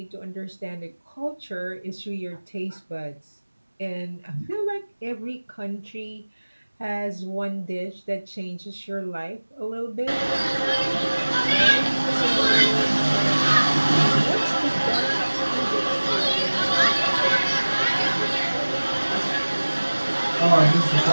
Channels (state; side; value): inverted; both; correlation -1.00